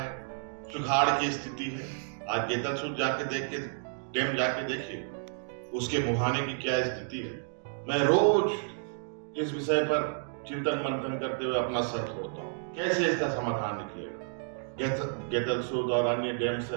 सुखाड़ की स्थिति है। आज गेतलसूद जाके देख के डैम जाके देखिए, उसके मुहाने की क्या स्थिति है। मैं रोज इस विषय पर चिंतन मंथन करते हुए अपना सर फोड़ता हूँ, कैसे इसका समाधान निकलेगा। गेतलसूद और अन्य डैम से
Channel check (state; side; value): silent; left; digital silence